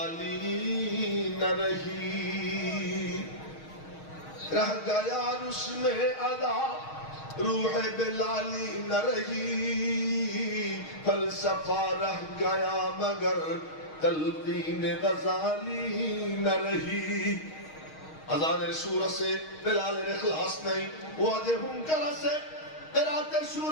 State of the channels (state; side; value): late; right; 6.4 ms